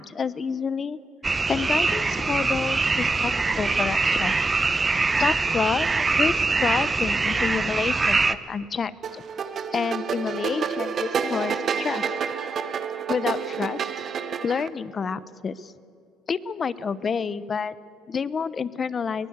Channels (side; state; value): both; normal; correlation 0.84